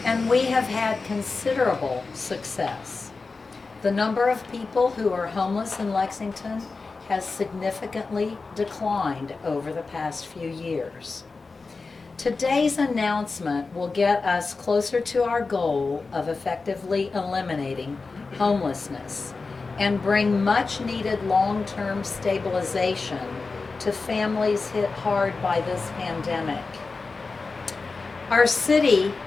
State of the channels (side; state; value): right; quieter; 4.1 dB